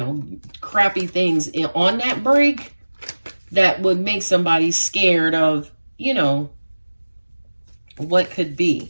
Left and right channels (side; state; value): both; inverted; correlation -1.00